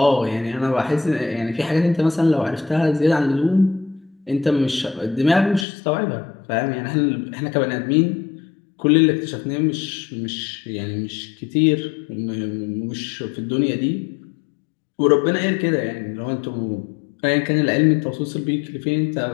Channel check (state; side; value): drops out; right; at 5.7 s